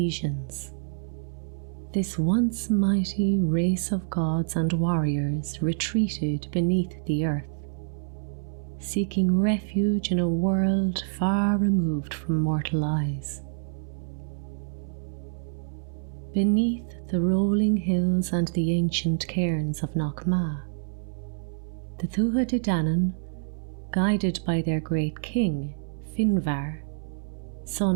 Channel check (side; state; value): left; silent; 59 dB below the other